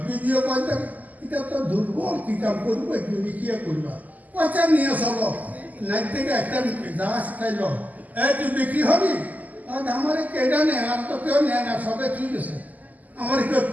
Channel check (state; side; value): late; left; 0.079 ms